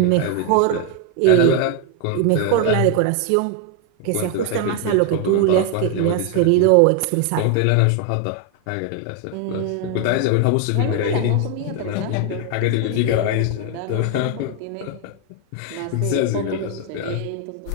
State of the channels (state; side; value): different; both; correlation 0.01